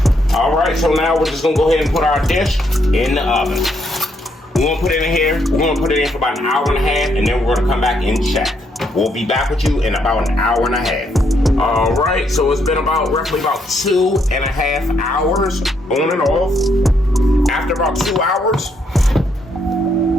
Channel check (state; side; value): normal; both; correlation 0.74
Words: All right, so now we're just gonna go ahead and put our dish in the oven. We're gonna put it in here. We're gonna put it in for about an hour and a half, and then we're gonna come back and check. We'll be back with you in about an hour and a half. All right, so it's been roughly about 2.5 hours on and off. After about 2 hours,